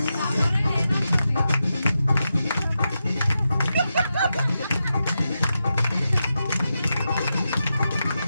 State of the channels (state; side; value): inverted; both; correlation -0.88